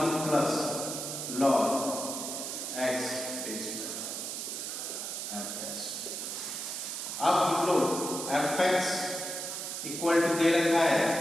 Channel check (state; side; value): noise; right; hiss, 5 dB below the sound